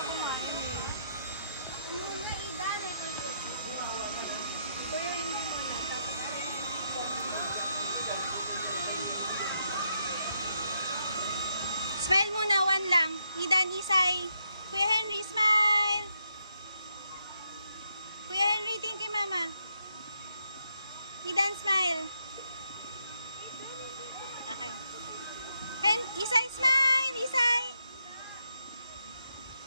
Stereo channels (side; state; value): both; inverted; correlation -0.79